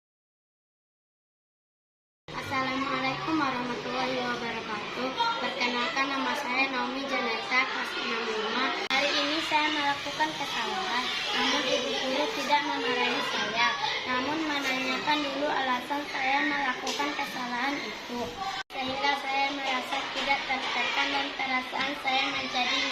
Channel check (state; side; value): identical; both; correlation 1.00